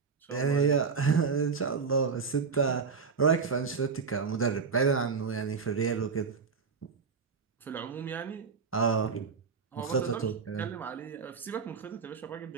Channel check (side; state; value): left; quieter; 5.4 dB